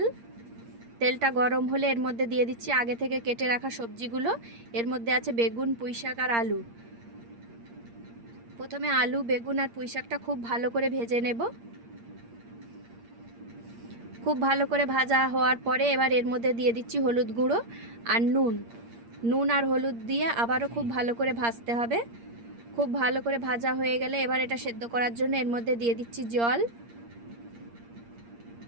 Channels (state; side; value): late; left; 8.6 ms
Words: তেলটা গরম হলে এর মধ্যে দিয়ে দিচ্ছি আগে থেকে কেটে রাখা সবজিগুলো। এর মধ্যে আছে বেগুন, পুঁইশাক আর আলু। প্রথমে আলু, বেগুন আর পুঁইশাকটা খুব ভালো করে ভেজে নেব। খুব ভালো করে ভাজা হওয়ার পরে এবার এর মধ্যে দিয়ে দিচ্ছি হলুদ গুঁড়ো আর নুন আর হলুদ দিয়ে আবারও খুব ভালো করে ভাজতে হবে। খুব ভালো করে ভাজা হয়ে গেলে এবার এটা সেদ্ধ করার জন্য এর মধ্যে দিয়ে দিচ্ছি